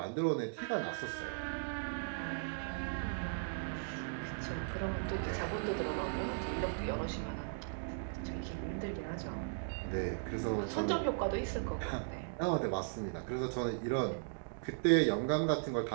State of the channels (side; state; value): left; silent; digital silence